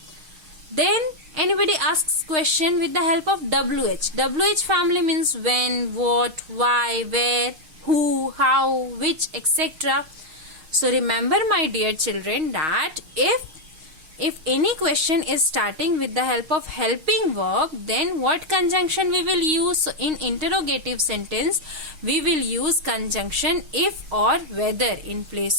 Then anybody asks question with the help of WH. WH family means when, what, why, where, who, how, which, etc. So remember, my dear children, that if any question is starting with the help of helping verb, then what conjunction we will use? So in interrogative sentence, we will use conjunction if or whether in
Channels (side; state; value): left; late; 6.4 ms